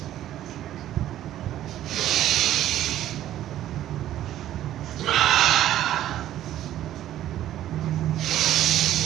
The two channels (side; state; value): left; quieter; 12.6 dB